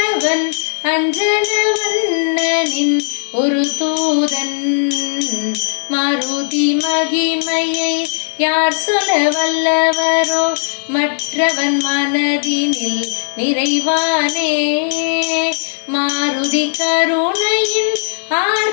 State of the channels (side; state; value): right; silent; digital silence